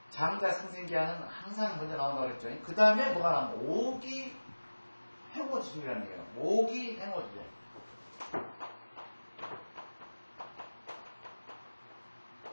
장자 승생기하는 항상 먼저 나온다고 그랬죠. 그 다음에 뭐가 나오면 오기 행호지중이라는 얘기예요. 오기 행호지중.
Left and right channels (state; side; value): inverted; both; correlation -1.00